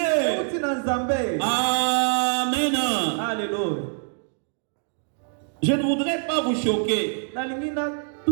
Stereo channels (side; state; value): left; silent; 62 dB below the other